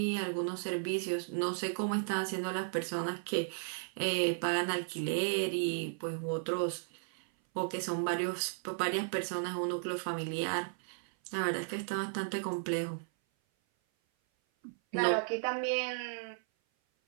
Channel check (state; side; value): silent; left; 55 dB below the other